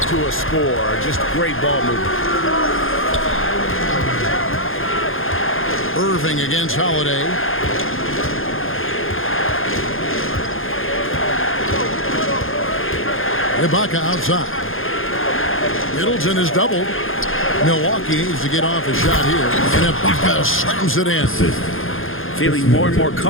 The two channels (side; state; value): right; late; 0.60 ms